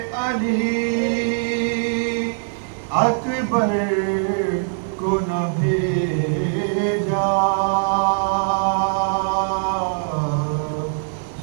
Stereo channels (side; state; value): left; silent; digital silence